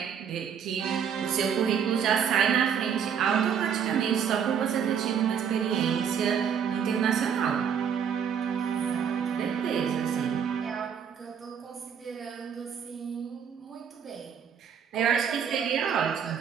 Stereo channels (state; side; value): quieter; left; 7.7 dB